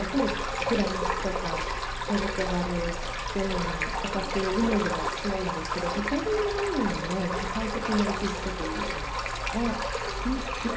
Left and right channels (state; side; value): identical; both; correlation 1.00